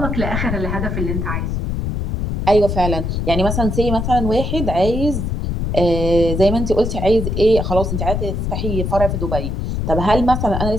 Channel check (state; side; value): noise; left; rumble, 2 dB below the sound